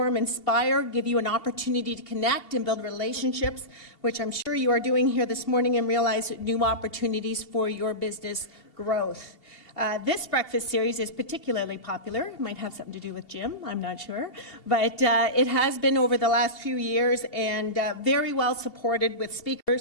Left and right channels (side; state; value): right; late; 2.7 ms